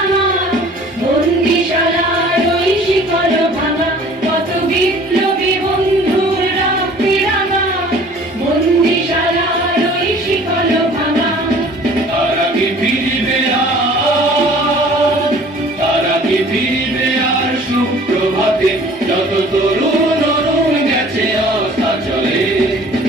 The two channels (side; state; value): both; normal; correlation 0.49